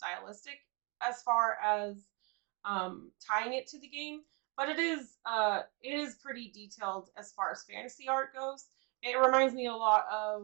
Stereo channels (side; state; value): left; quieter; 31.9 dB